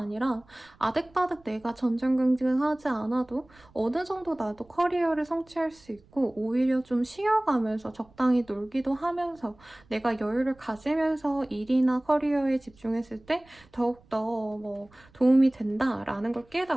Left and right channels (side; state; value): right; noise; rumble, 29 dB below the sound